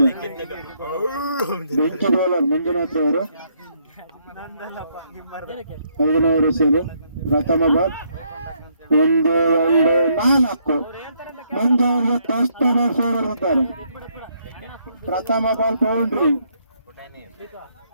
ಬೆಂಚ್ ಬೌಲರ್ ಮಂಜುನಾಥ್ ಅವರು 5 ಸೇರು. ಪ್ರಥಮ ಬಾಲ್ 1 2 4. ಮಂಜು ಅವರಿಗೆ ಫಸ್ಟ್ ಬಾಲ್ ಹೊಡೆದಿದ್ದಾರೆ. ಪ್ರಥಮ ಬಾಲ್ ಬೌಂಡ್ರಿ.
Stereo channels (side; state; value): both; inverted; correlation -0.72